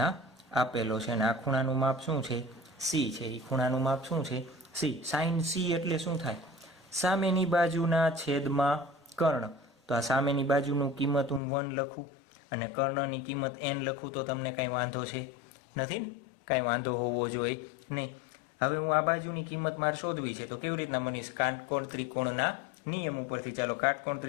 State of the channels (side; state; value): right; drops out; at 11.4 s